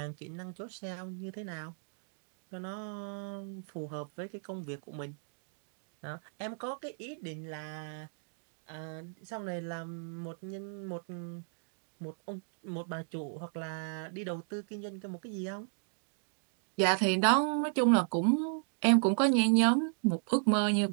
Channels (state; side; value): silent; left; digital silence